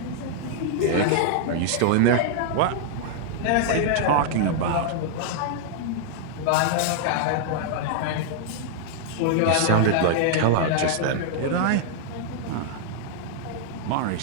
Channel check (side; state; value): both; different; correlation -0.01